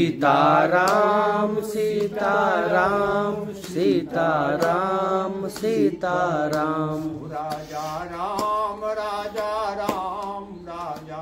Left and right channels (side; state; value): both; identical; correlation 1.00